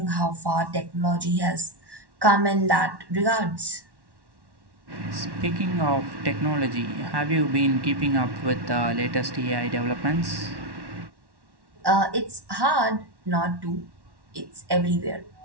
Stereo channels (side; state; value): left; late; 1.1 ms